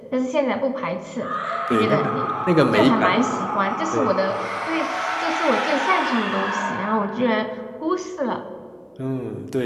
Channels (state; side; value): identical; both; correlation 1.00